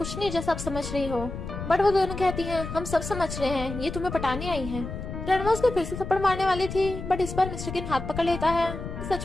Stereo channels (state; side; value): noise; left; rumble, 8 dB below the sound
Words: नहीं जैसा आप समझ रही हो, बट वो दोनों कहती हैं हम सब समझ रहे हैं, ये तुम्हें पटाने आई हैं। ग्रैंडमा उसने फिर से थप्पड़ मारने वाली थी, बट इस बार मिस्टर किन हाथ पकड़ लेता है